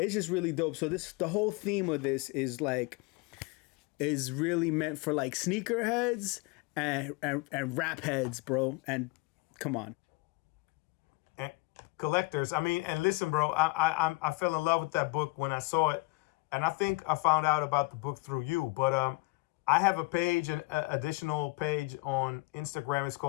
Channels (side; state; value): right; quieter; 25.1 dB